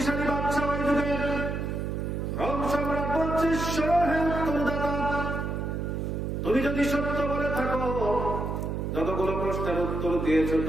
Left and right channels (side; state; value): right; noise; hum, 2 dB below the sound